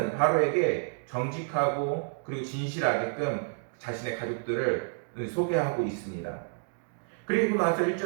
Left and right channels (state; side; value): silent; left; digital silence